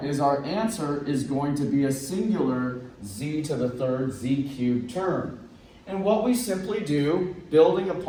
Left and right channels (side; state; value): both; identical; correlation 1.00